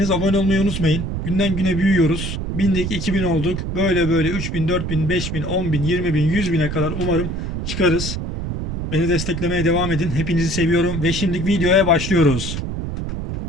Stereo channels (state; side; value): noise; right; rumble, 4 dB below the sound